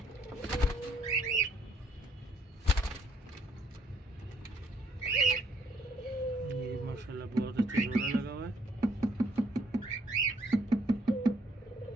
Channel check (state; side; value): normal; both; correlation 0.67